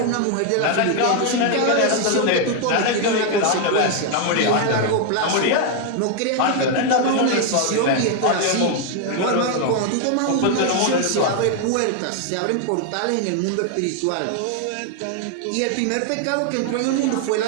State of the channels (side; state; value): both; different; correlation 0.01